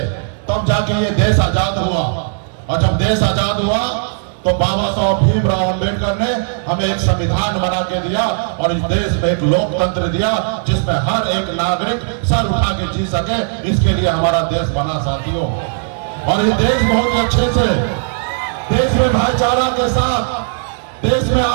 तब जाके ये देश आजाद हुआ। और जब देश आजाद हुआ तो बाबा साहब भीमराव अंबेडकर ने हमें एक संविधान बना के दिया और इस देश में एक लोकतंत्र दिया जिसमें हर एक नागरिक सर उठा के जी सके। इसके लिए हमारा देश बना साथियों। और ये देश बहुत अच्छे से, देश में भाईचारा के साथ, देश में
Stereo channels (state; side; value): silent; left; digital silence